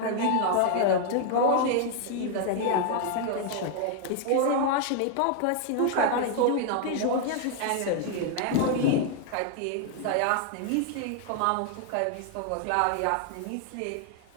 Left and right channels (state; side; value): different; both; correlation 0.00